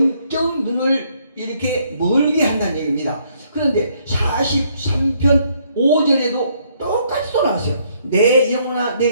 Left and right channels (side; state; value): both; inverted; correlation -0.69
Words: 눈을 이렇게 멀게 한다는 얘기입니다. 그런데 43편 5절에도 똑같이 또 나왔어요. 내 영혼아